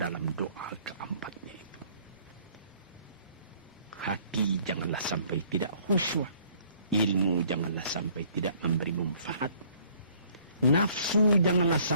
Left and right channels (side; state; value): both; inverted; correlation -0.60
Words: doa keempatnya itu. Hati janganlah sampai tidak khusyuk. Ilmu janganlah sampai tidak memberi manfaat. Nafsu janganlah